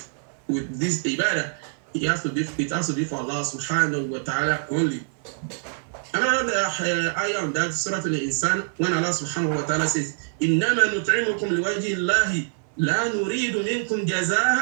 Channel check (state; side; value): silent; left; 56 dB below the other